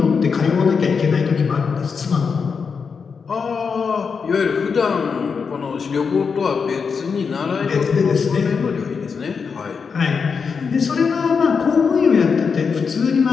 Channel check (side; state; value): right; quieter; 5.7 dB